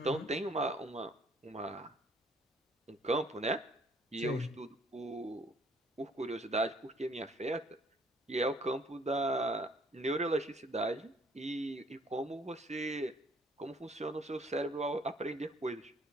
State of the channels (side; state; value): both; normal; correlation 0.61